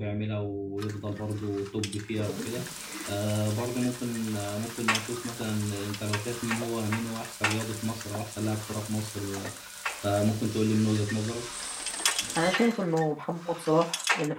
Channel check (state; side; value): identical; both; correlation 1.00